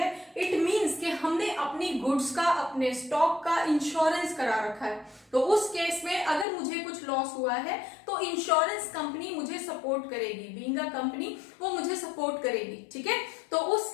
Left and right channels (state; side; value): drops out; right; at 6.5 s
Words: इट मींस कि हमने अपनी गुड्स का, अपने स्टॉक का इंश्योरेंस करा रखा है. तो उस केस में अगर मुझे कुछ लॉस हुआ है तो इंश्योरेंस कंपनी मुझे सपोर्ट करेगी. बीइंग अ कंपनी वो मुझे सपोर्ट करेगी, ठीक है. तो उस